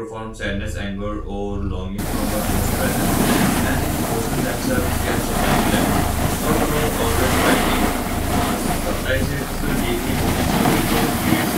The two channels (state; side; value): identical; both; correlation 1.00